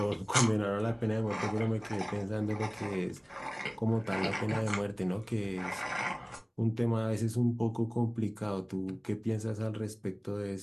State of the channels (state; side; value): identical; both; correlation 1.00